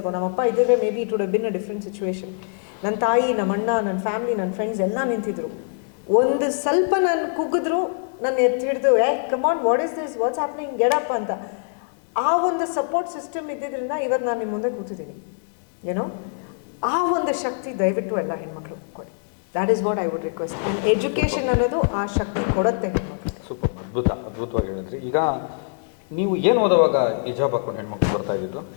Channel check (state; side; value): silent; right; digital silence